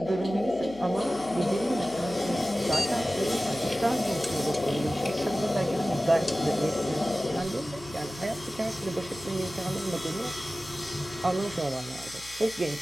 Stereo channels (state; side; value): noise; left; hum, 20 dB below the sound